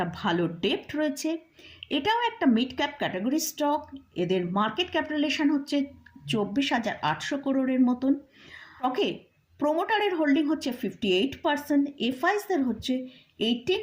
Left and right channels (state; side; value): identical; both; correlation 1.00